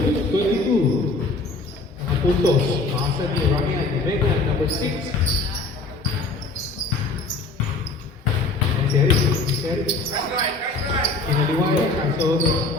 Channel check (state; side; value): quieter; right; 3.5 dB